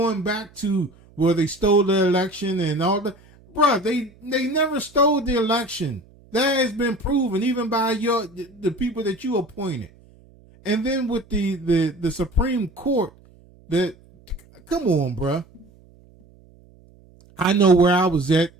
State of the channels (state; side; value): noise; right; hum, 27 dB below the sound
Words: back to where they stole the election and all that. Bruh, they never stole the election. That has been proven even by the people that you appointed. And then with the Supreme Court, come on, bruh. I know where I was at